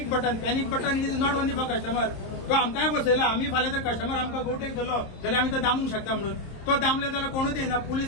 button is not only for customer. तो आमकांय बसयला आमी फाल्यां जर कस्टमर आमकां गोवटेक धरलो जाल्यार आमी तो दामूंक शकता म्हणून तो दामले जाल्यार कोणूच येना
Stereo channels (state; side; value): late; right; 26 ms